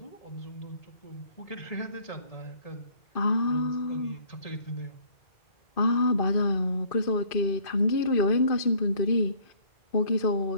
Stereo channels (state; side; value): late; right; 2.5 ms